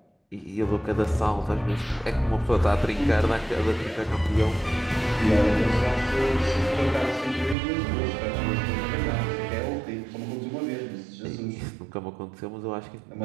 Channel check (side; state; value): left; drops out; at 7.6 s